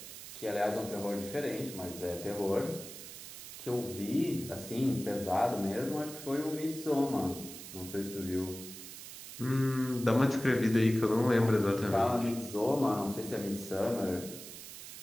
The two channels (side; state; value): right; noise; hiss, 12 dB below the sound